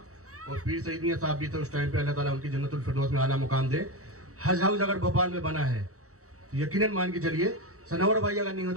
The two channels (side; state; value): left; late; 0.65 ms